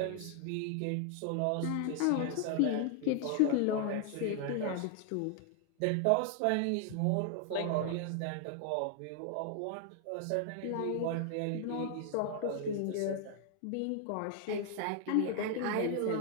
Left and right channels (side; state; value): both; different; correlation 0.00